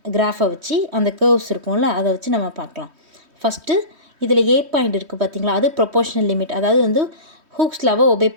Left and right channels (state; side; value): late; left; 3.1 ms